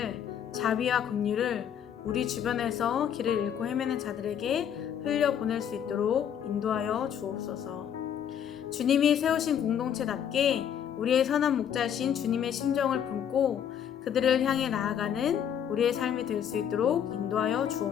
자비와 긍휼을 우리 주변에서 길을 잃고 헤매는 자들에게 흘려보낼 수 있도록 인도하여 주옵소서. 주님이 세우신 공동체답게 우리의 선한 목자이신 주님의 심정을 품고 그들을 향해 나아가는 우리의 삶이 될 수 있도록 인도하여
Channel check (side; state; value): right; quieter; 8.9 dB